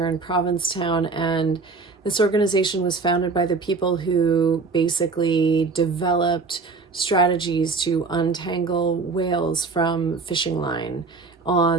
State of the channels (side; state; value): left; quieter; 4.2 dB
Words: in Provincetown, and this organization was founded by the people who basically developed strategies to untangle whales from fishing line